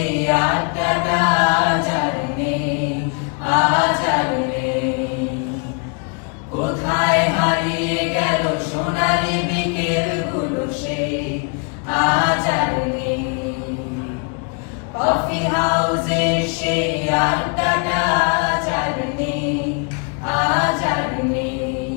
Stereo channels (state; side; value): quieter; right; 37.7 dB